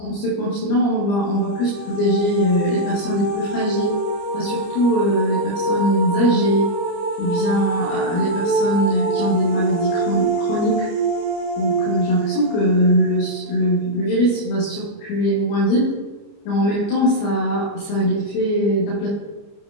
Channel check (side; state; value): right; late; 29 ms